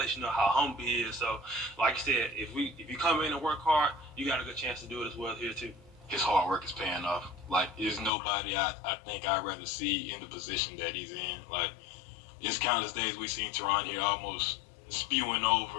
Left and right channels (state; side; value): drops out; right; at 8.1 s